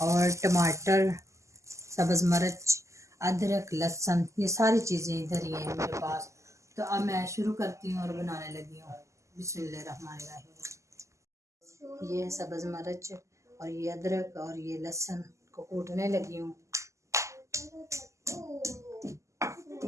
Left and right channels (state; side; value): late; left; 0.15 ms